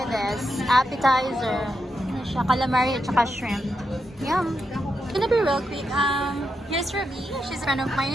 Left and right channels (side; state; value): both; normal; correlation 0.85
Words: this appetizer. Ano siya? Calamari at saka shrimp. Yum. Gonna be real quick. Here's Ruby. She's a friend of